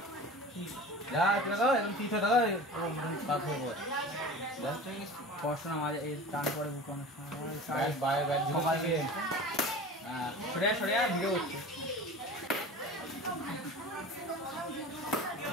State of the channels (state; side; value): normal; both; correlation 0.36